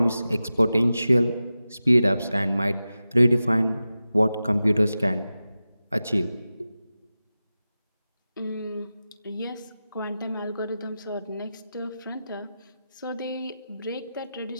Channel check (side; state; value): both; inverted; correlation -0.94